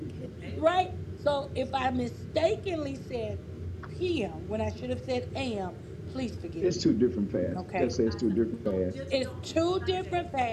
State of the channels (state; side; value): identical; both; correlation 1.00